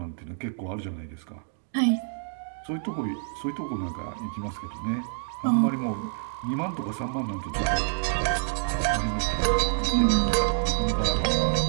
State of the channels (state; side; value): silent; left; digital silence